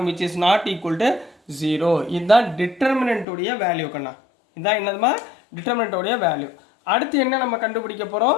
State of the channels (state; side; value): drops out; right; at 3.2 s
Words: which is not equal to 0. இதுதான் டிட்டர்மினன்ட்டுடைய வேல்யூ கண்ணா. இதுதான் என்னதுமா, டிட்டர்மினன்ட்டுடைய வேல்யூ. அடுத்து என்ன நம்ம கண்டுபிடிக்க